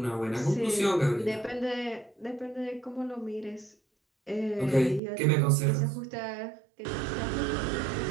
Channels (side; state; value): left; drops out; at 5.0 s